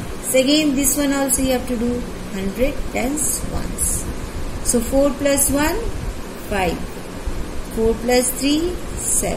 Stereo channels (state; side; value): identical; both; correlation 1.00